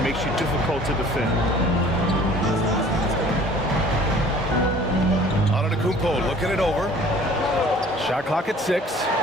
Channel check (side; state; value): both; normal; correlation 0.50